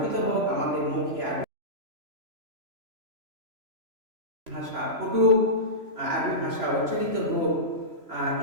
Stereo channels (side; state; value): left; late; 3.0 ms